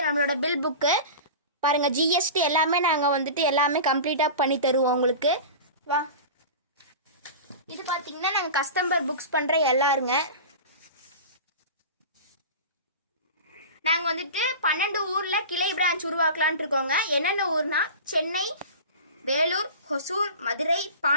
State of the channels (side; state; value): both; inverted; correlation -0.32